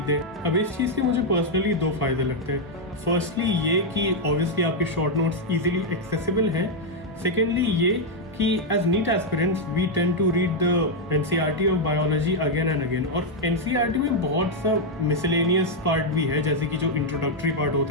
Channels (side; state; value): both; normal; correlation -0.01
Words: दें। अब इस चीज़ के मुझे पर्सनली 2 फायदे लगते हैं। फर्स्टली ये कि ऑब्वियसली आपके शॉर्ट नोट्स इजीली एक्सेसिबल हैं। सेकेंडली ये कि as NEET aspirants we tend to read the NCERT of biology again and again, और NCERT में बहुत सा मिसलेनियस पार्ट भी है, जैसे कि जो इंट्रोडक्टरी पार्ट